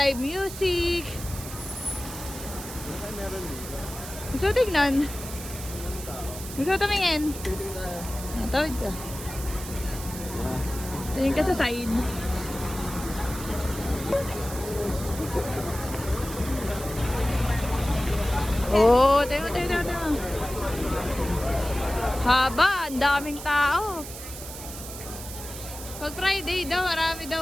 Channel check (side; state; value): right; noise; hiss, 11 dB below the sound